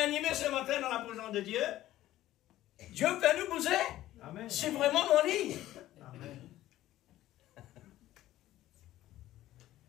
animé ce matin dans la présence de Dieu, Dieu fait nous bouger. Amen. C'est vraiment mon lit. Amen.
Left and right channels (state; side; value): quieter; right; 14.6 dB